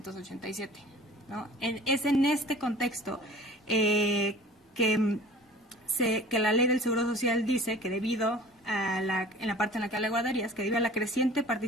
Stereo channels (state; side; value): normal; both; correlation 0.44